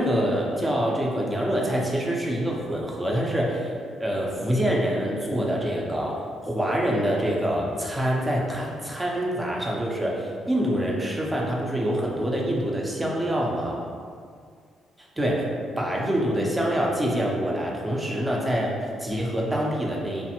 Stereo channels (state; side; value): normal; both; correlation 0.81